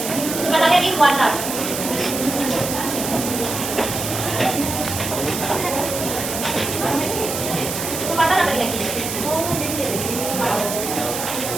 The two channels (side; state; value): right; noise; hiss, 5 dB below the sound